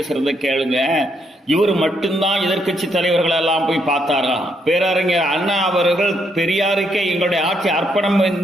கேளுங்க. இவர் மட்டும்தான் எதிர்கட்சி தலைவர்கள் எல்லாம் போய் பார்த்தாராம். பேரறிஞர் அண்ணா அவர்கள் பெரியாருக்கே எங்களுடைய ஆட்சி அர்ப்பணம்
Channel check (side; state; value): both; normal; correlation 0.75